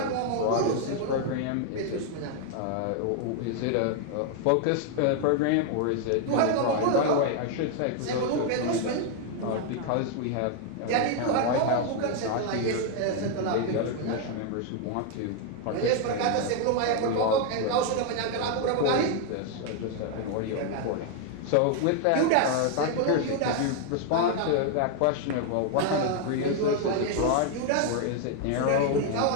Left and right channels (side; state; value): both; different; correlation 0.00